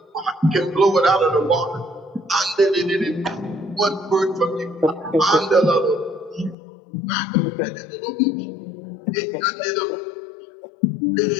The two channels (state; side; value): drops out; right; at 6.6 s